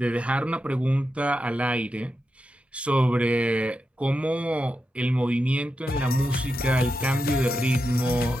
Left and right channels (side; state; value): both; normal; correlation 0.88